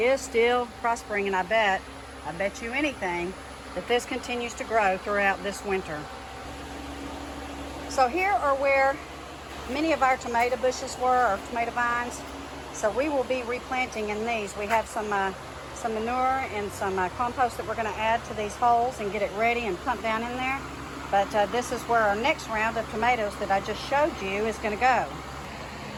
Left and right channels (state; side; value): identical; both; correlation 1.00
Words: still prospering, and I bet you anything that this continues to grow throughout this winter. So here are where many of our tomato bushes were, or tomato vines. So we will be replanting in these. We have some manure and some compost that we're going to add to these holes and get it ready and pump down in there. But this is where our next round of tomatoes that I just showed you is going to go.